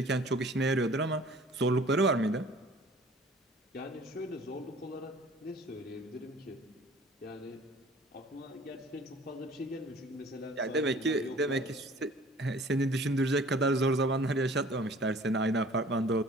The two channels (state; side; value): normal; both; correlation 0.49